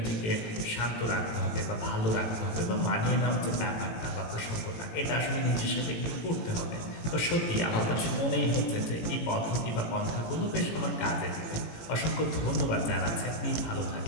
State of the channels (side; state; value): right; late; 18 ms